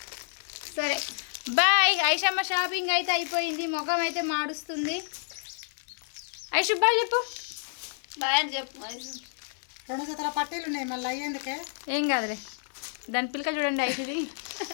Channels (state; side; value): silent; right; digital silence